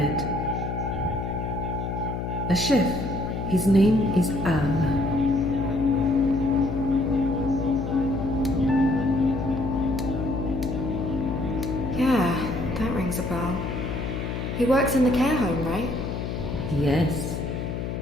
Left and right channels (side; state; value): left; noise; hum, 4 dB below the sound